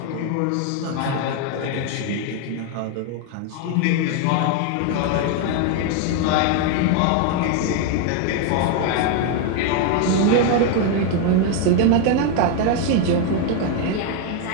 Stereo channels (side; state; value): both; different; correlation 0.00